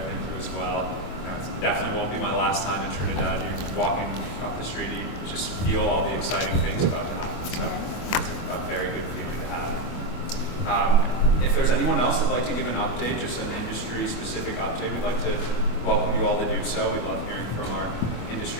thank you as well. You know, it definitely won't be my last time in Trinidad. You're walking up the street, you just feel all the exciting things about to happen. So it's a very good feeling to have. If there's anyone else that'd like to give an update, just an industry-specific update, we'd like to welcome you all to do so. We love hearing from our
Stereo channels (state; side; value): late; right; 25 ms